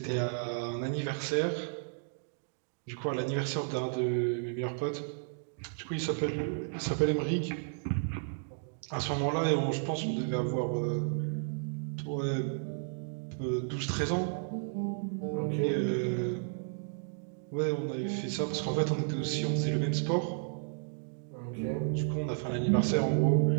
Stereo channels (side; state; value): left; silent; digital silence